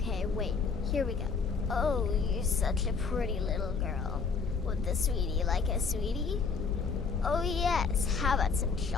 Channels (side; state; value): right; quieter; 5.1 dB